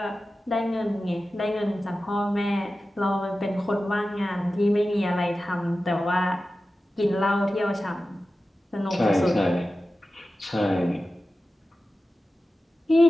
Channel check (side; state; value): both; normal; correlation 0.94